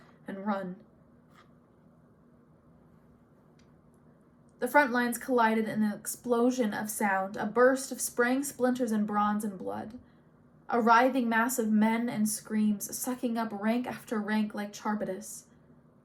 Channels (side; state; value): both; identical; correlation 1.00